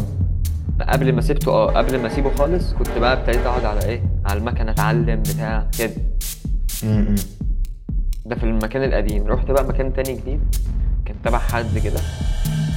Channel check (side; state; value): both; identical; correlation 1.00